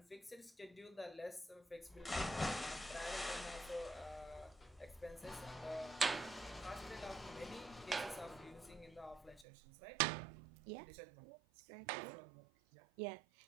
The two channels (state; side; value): drops out; left; at 9.5 s